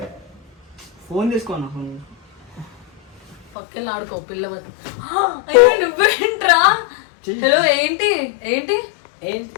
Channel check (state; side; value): drops out; right; at 3.5 s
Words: ఫోన్ తీసుకోనా పక్కన ఆడుకో పిల్ల నువ్వేంట్రా హలో ఏంటి ఏంటి